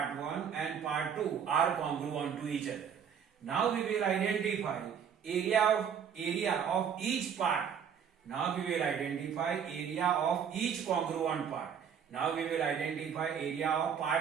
1 and part 2 are congruent to each other. Now we will identify area of each part. Now we will identify area of each congruent part. Now we will identify area of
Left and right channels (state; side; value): quieter; left; 7.7 dB